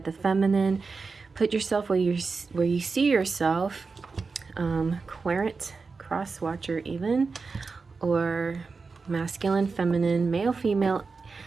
the feminine. Put yourself where you see yourself, querent, cross watcher even, or masculine, feminine, male, female.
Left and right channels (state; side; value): quieter; left; 4.5 dB